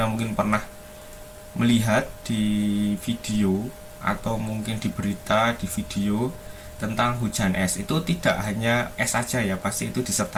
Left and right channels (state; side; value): identical; both; correlation 1.00